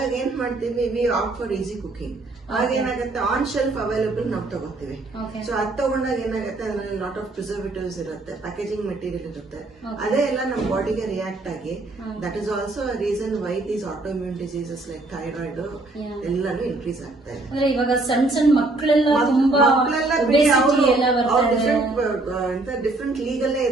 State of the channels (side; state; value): left; quieter; 3.0 dB